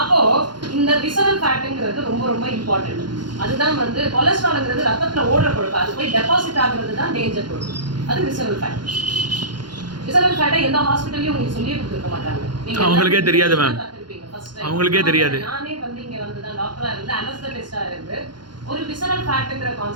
இந்த விசரல் ஃபேட்டுங்கிறது ரொம்ப ரொம்ப இம்பார்ட்டன்ட். அதுதான் வந்து கொலஸ்ட்ரால்ங்கிறது ரத்தத்துல ஓடுற கொழுப்பு. அது போய் டெபாசிட் ஆகுறது தான் டேஞ்சர் கொழுப்பு. அது விசரல் ஃபேட். விசரல் ஃபேட்டை எந்த ஹாஸ்பிட்டல்லையும் உங்களுக்கு சொல்லியே கொடுத்துருக்க மாட்டாங்க. அவங்களுக்கே தெரியாது மேம். அவங்களுக்கே தெரியாது. நானே வந்து இங்க வந்து தான் டாக்டரா இருந்து அனஸ்தெட்டிஸ்டா இருந்து ஒரு விசரல் ஃபேட்ங்கிற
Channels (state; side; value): late; left; 0.71 ms